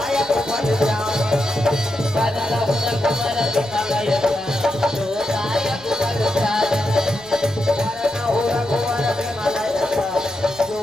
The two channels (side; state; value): left; noise; hum, 27 dB below the sound